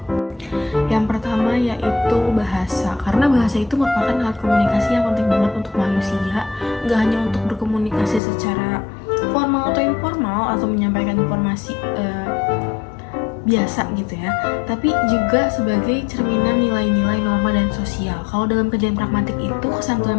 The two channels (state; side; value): drops out; right; at 8.2 s